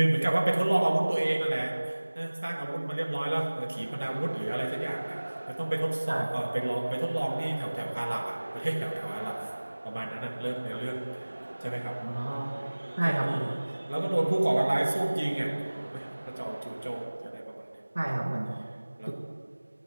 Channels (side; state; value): both; inverted; correlation -1.00